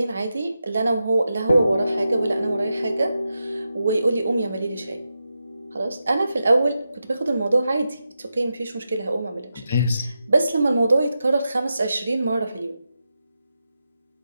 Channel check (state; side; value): inverted; both; correlation -0.88